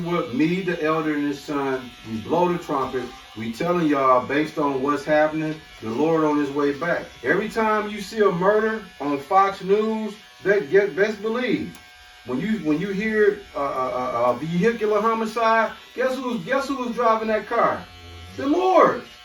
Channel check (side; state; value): both; identical; correlation 1.00